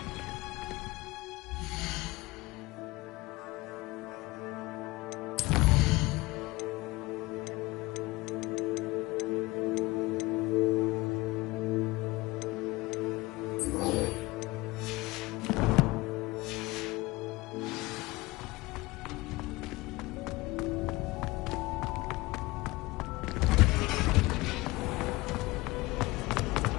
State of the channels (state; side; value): quieter; right; 21.4 dB